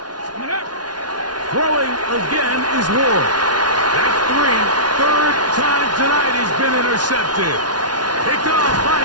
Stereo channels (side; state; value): left; late; 0.69 ms